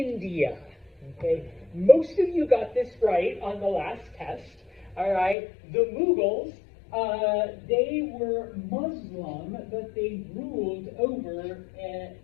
Okay, most of you got this right on the last test. All right, the Mughals, they were Muslim, but they ruled over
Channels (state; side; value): drops out; right; at 5.4 s